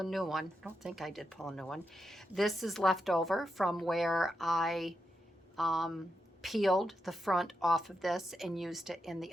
new one. I don't think I did pull a new one. This is left over from where I peeled the front off of this and used it in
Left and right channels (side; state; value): both; normal; correlation 0.86